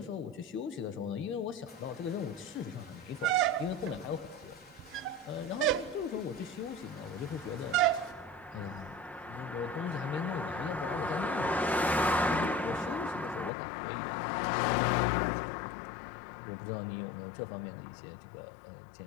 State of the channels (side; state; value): right; drops out; at 13.5 s